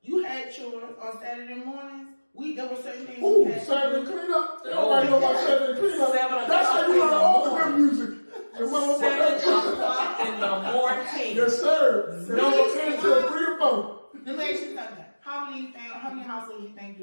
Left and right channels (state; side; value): inverted; both; correlation -1.00